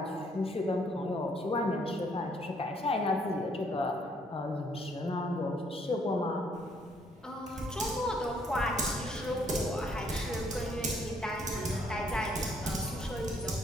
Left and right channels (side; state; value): both; normal; correlation 0.67